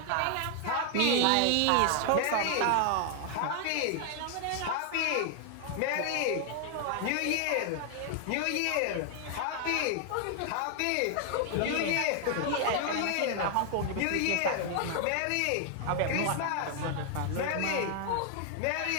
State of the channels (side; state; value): both; different; correlation 0.00